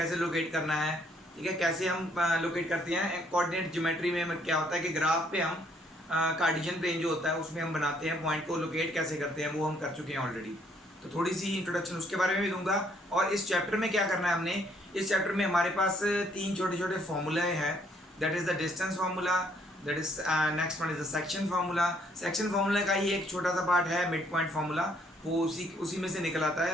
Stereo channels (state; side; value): normal; both; correlation 0.67